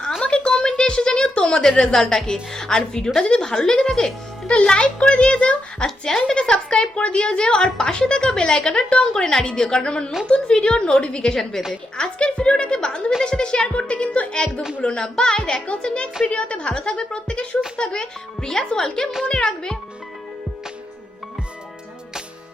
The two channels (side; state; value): both; normal; correlation 0.84